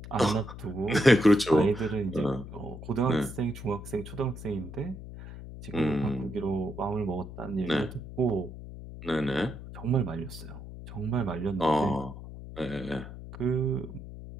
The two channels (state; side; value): noise; left; hum, 12 dB below the sound